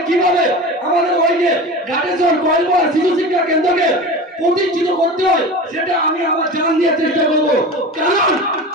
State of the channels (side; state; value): both; normal; correlation 0.31